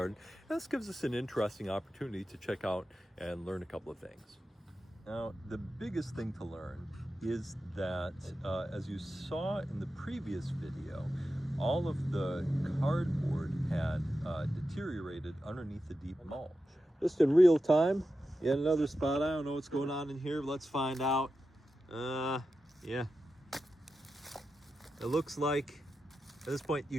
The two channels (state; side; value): normal; both; correlation 0.91